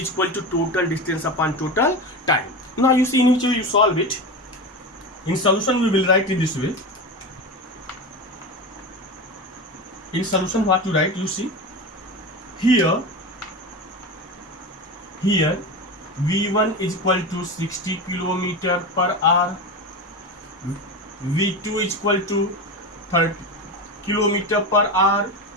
equal to total distance upon total time. Now you see in which way you solve it. In solution we will write in this way. In solution what you write, you see here v1 is equal to 60 km per hour, v2 is equal to 30 km per hour,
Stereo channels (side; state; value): both; normal; correlation 0.23